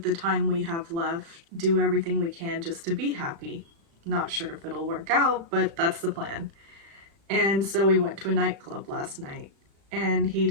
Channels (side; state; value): left; late; 36 ms